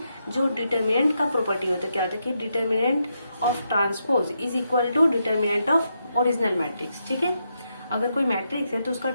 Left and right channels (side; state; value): both; inverted; correlation -0.82